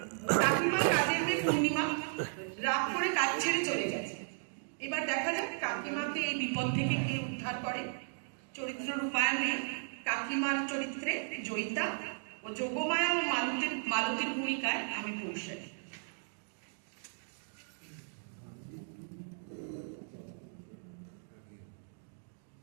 কাকিমা কাজের মেয়ে পূর্ণিমা রাগ করে কাজ ছেড়ে চলে গেছে। এবার দেখা যাক কাকিমাকে এই বিপদ থেকে কে উদ্ধার করে। চরিত্র রূপায়ণে কাকিমার চরিত্রে জয়িতা ও যোগমায়া ও মালতীর ভূমিকায় আমি পৌঁছাই।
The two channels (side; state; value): left; silent; digital silence